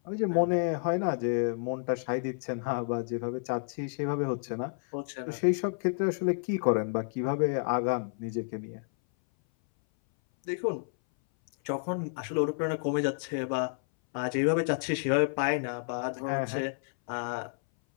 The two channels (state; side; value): silent; right; 58 dB below the other